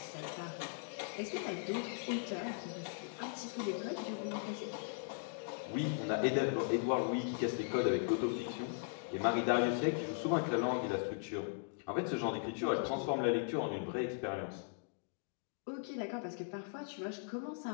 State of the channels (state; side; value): silent; right; digital silence